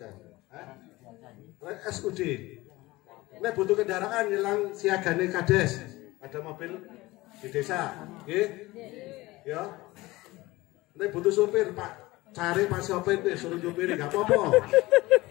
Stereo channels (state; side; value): quieter; right; 19.8 dB